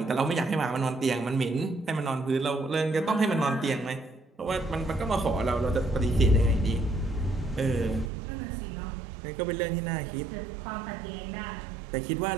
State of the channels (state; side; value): drops out; left; at 8.1 s